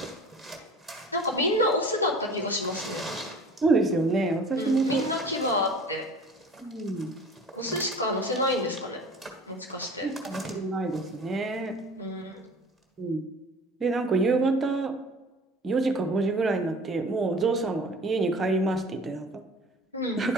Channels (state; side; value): normal; both; correlation 0.42